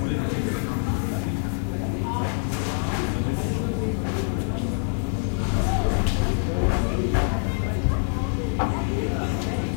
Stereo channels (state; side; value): silent; right; 56 dB below the other